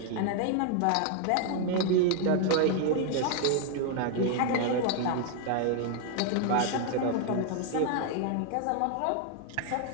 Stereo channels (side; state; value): both; different; correlation 0.00